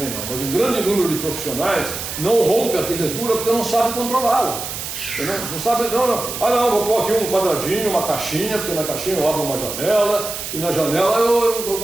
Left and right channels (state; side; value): noise; right; hiss, 7 dB below the sound